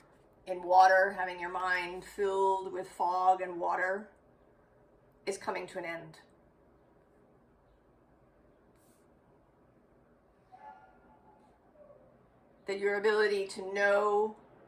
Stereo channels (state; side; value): identical; both; correlation 1.00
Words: in water, having your mind filled with fog and water, is coming to an end. That your ability to know